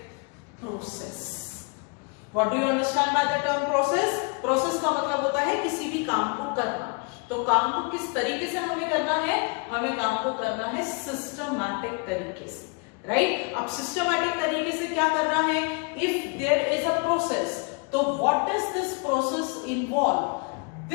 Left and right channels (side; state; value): right; quieter; 33.5 dB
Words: process. What do you understand by the term process? Process का मतलब होता है किसी भी काम को करना. तो काम को किस तरीके से हमें करना है? हमें काम को करना है सिस्टमैटिक तरीके से, राइट? अब सिस्टमैटिक तरीके से क्या करना है? If there is a process, तो what does this process involve?